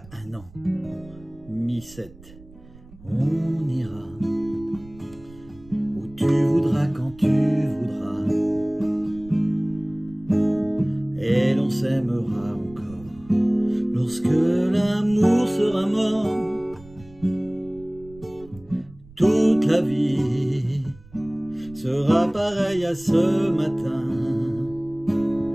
un an, Mi 7. On ira où tu voudras, quand tu voudras, et l'on s'aimera encore lorsque l'amour sera mort. Toute la vie sera pareille à ce matin,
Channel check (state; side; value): noise; right; rumble, 22 dB below the sound